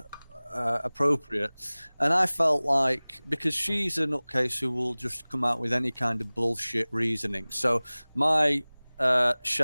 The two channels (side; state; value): both; inverted; correlation -1.00